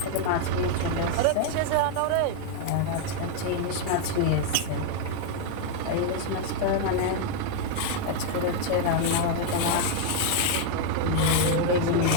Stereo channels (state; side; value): different; both; correlation 0.00